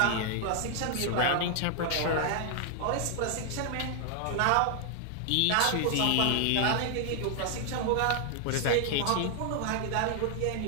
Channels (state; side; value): different; both; correlation 0.00